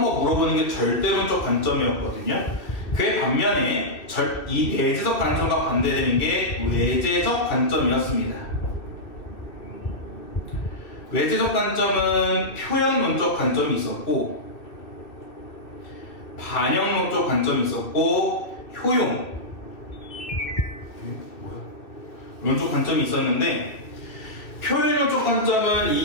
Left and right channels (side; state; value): right; late; 2.4 ms